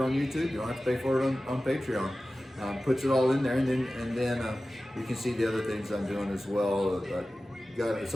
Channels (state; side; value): normal; both; correlation 0.95